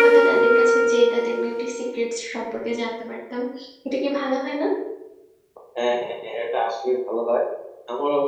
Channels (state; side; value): identical; both; correlation 1.00